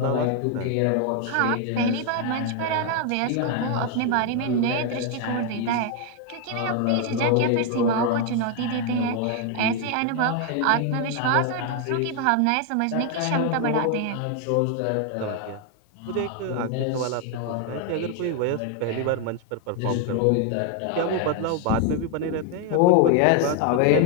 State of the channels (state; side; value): different; both; correlation 0.01